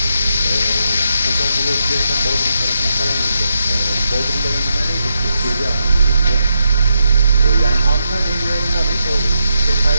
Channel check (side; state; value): both; inverted; correlation -0.83